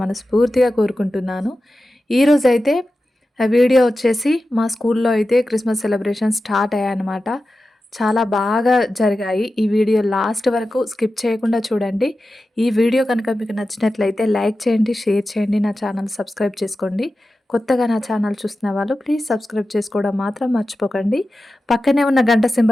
కోరుకుంటున్నాను. ఈరోజైతే వీడియో వచ్చేసి మా స్కూల్లో అయితే క్రిస్మస్ సెలబ్రేషన్ స్టార్ట్ అయ్యాయన్నమాట. చాలా బాగా జరిగాయి. ఈ వీడియో లాస్ట్ వరకు స్కిప్ చేయకుండా చూడండి. ఈ వీడియో కనుక మీకు నచ్చినట్లయితే లైక్ చేయండి, షేర్ చేయండి, నా ఛానల్ సబ్స్క్రైబ్ చేసుకోండి. కొత్తగా నా ఛానల్ చూస్తున్న వాళ్ళు ప్లీజ్ సబ్స్క్రైబ్ చేసుకోవడం మాత్రం మర్చిపోకండి. పక్కనే ఉన్న గంట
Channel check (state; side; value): normal; both; correlation 0.93